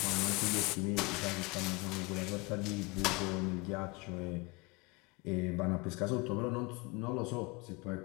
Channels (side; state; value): right; quieter; 26.3 dB